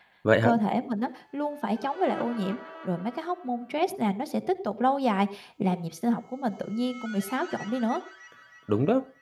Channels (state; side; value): identical; both; correlation 1.00